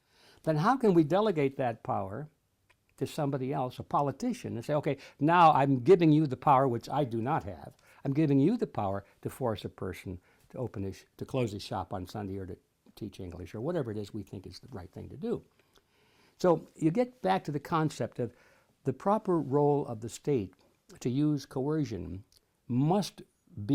then how can we delegate that power to somebody else, a politician, and say, okay, now I'm giving you the power, which I do not have. I'm giving you the power to force a person to close his shop on Sunday or to teach English or whatever it is we think is the right thing to do. So you get back to the concept of the proper role of the state to use coercion must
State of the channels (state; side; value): identical; both; correlation 1.00